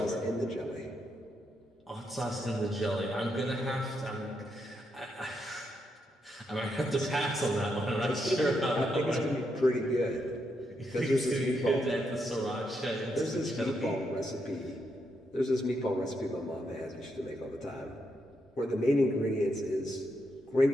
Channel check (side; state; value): both; normal; correlation 0.80